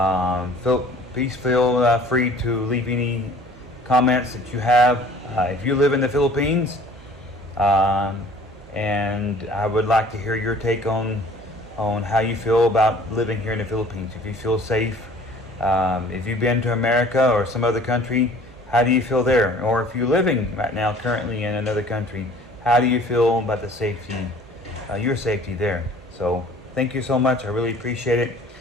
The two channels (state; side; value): normal; both; correlation 0.51